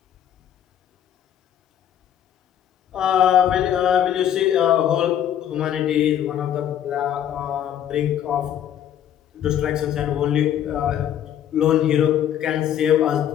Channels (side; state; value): right; quieter; 10.3 dB